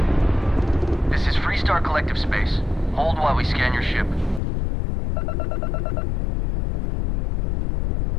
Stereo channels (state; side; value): drops out; right; at 4.4 s